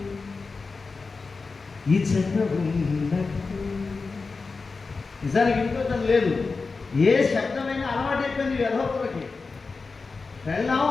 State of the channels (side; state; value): right; quieter; 4.3 dB